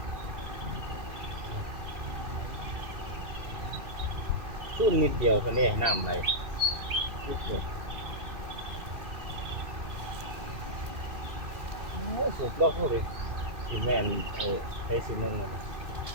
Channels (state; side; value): late; left; 2.5 ms